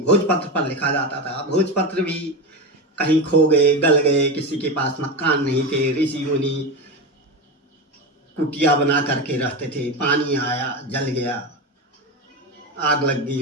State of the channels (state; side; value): normal; both; correlation 0.19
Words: पर लिखा जाता था। भोजपत्र भी कहीं खो गए, गल गए, किसी के पास मकान नहीं थे, ऋषि मुनि कुटिया बना करके रहते थे। पानी आया, जल गया, आग लग